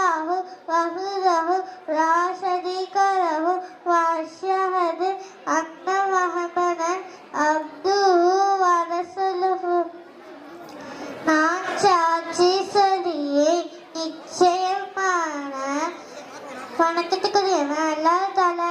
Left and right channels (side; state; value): both; identical; correlation 1.00